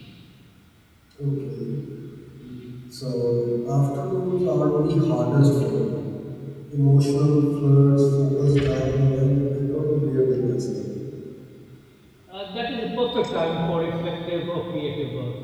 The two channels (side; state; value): both; identical; correlation 1.00